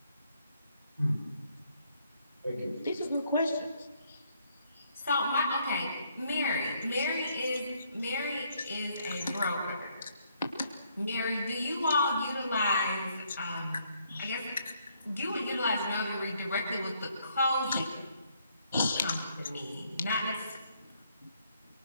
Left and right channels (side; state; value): both; inverted; correlation -0.70